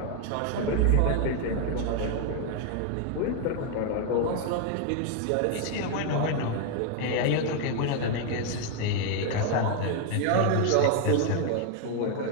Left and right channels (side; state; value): both; different; correlation 0.01